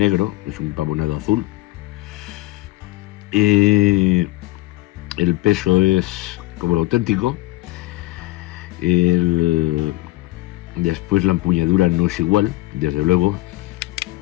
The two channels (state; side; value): quieter; right; 18.6 dB